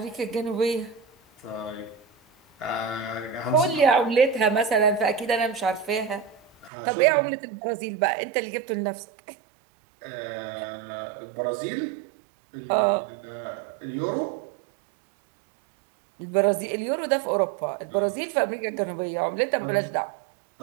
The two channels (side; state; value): left; drops out; at 6.7 s